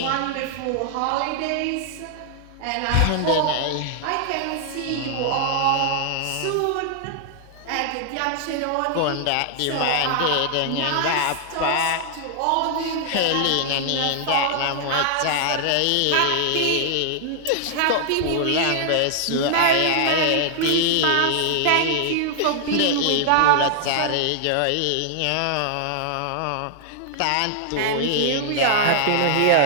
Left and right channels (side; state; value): both; different; correlation 0.00